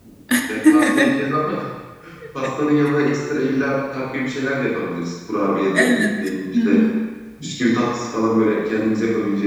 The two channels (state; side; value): identical; both; correlation 1.00